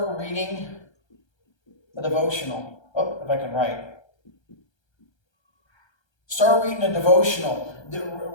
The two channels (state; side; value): late; right; 1.3 ms